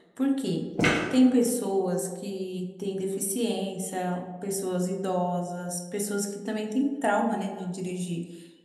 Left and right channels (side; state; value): both; identical; correlation 1.00